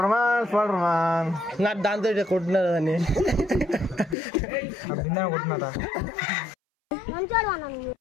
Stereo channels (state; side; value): drops out; right; at 4.2 s